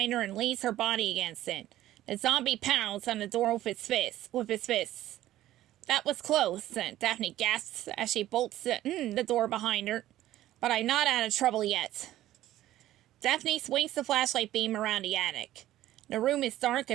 her and leans her body against it. The zombie pounds on the door with his fists. That was close, Daphne gasps as she bolts the door behind her. But I'm not out of trouble yet. Daphne swings the flashlight beam around the attic. The room is dark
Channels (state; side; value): quieter; left; 14.1 dB